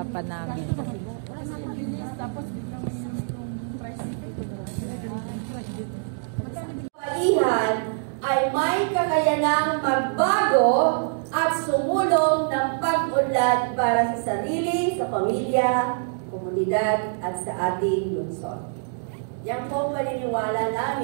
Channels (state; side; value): silent; left; digital silence